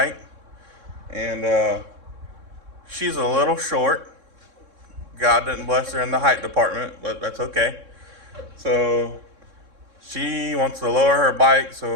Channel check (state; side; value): late; left; 3.6 ms